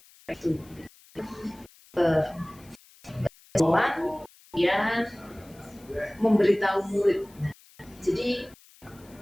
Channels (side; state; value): left; noise; hiss, 26 dB below the sound